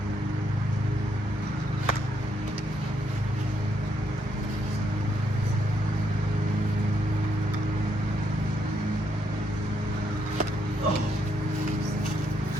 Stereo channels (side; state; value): both; normal; correlation 0.76